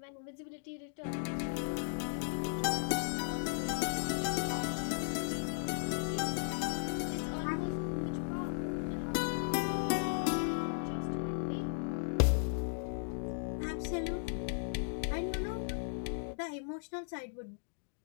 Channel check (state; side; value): silent; right; digital silence